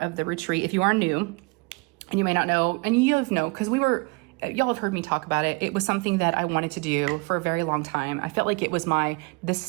of the retreat, if you are new and you may not know, and you know, because y'all have heard me talk about it. It was something that I wanted to do for a very long time. I felt like it was this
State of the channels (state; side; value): quieter; left; 29.5 dB